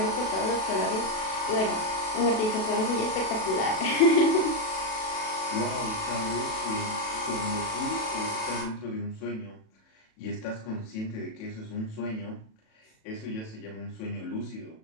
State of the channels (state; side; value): late; right; 37 ms